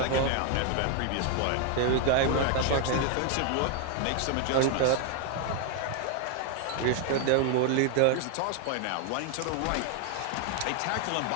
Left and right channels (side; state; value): both; different; correlation 0.01